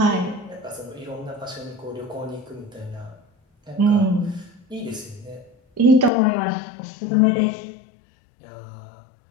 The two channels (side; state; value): right; drops out; at 6.1 s